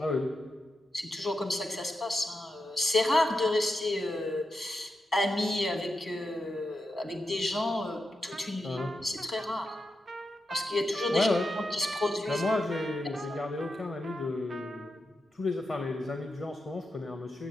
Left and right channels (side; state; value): both; normal; correlation 0.88